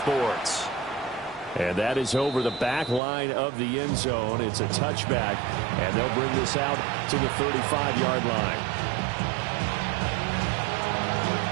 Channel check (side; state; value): left; drops out; at 3.0 s